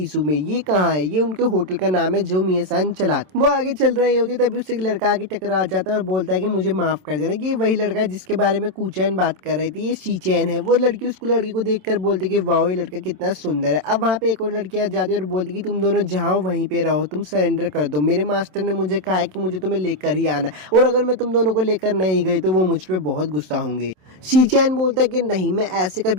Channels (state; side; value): late; left; 27 ms